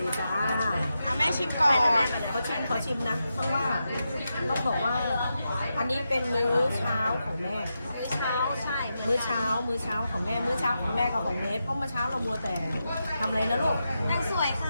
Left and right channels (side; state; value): both; inverted; correlation -0.87